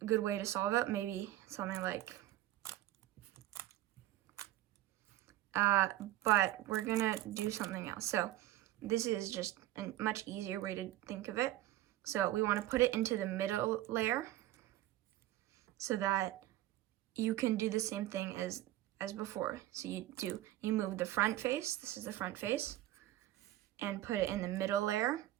good way to solve it, maybe something like, but we're gonna do something else. So this is just a much easier way to think of it. So we want to put it into the middle layer so that you can do the same thing as before. So you move the front face, this is the front face, and put it in the middle layer.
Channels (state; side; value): quieter; left; 15.0 dB